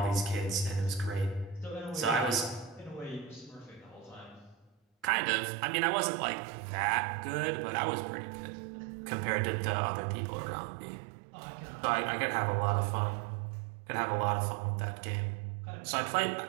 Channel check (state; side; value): drops out; left; at 5.1 s